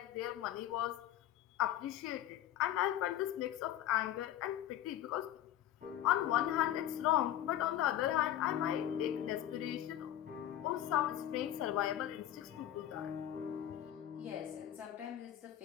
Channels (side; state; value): right; quieter; 12.1 dB